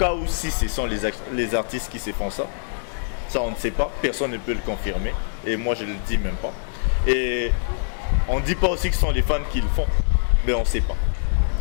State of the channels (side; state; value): right; silent; digital silence